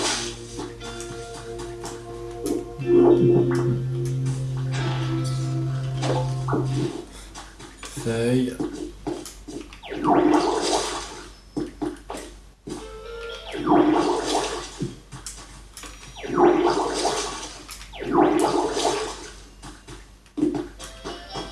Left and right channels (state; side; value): identical; both; correlation 1.00